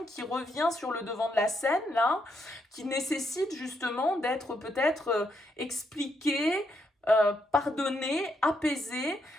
qui revient sur le devant de la scène là, qui nécessite justement d'être peut-être expliquée, pardonner, apaiser,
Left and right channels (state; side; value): normal; both; correlation 0.78